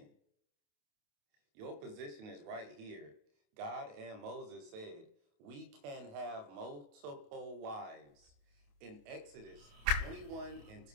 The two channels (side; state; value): left; late; 28 ms